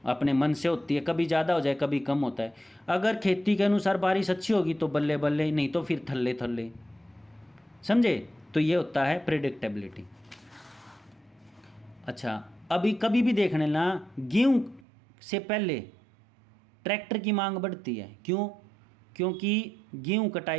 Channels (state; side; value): drops out; left; at 14.8 s